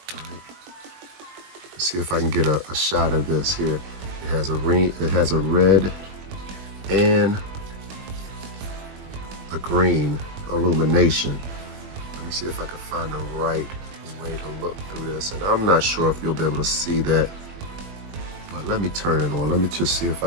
Right? Let's see if I can get a shot of this here. It has a red and a green illumination. Let me see if I can find the right way to look through this. And I'm not sure if you'll be able to see that. But let me turn it on. Let me just see if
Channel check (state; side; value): late; left; 21 ms